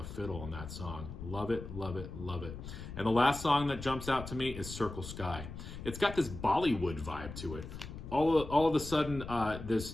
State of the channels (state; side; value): noise; left; rumble, 10 dB below the sound